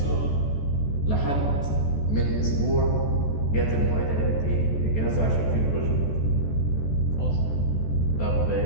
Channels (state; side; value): late; right; 14 ms